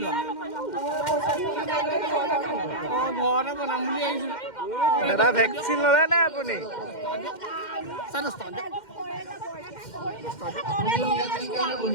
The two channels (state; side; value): late; right; 2.1 ms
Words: ঘৰতে বনাম বুলি আহিছিলোঁ দাদা ভেকচিন ল'লে নে আপুনি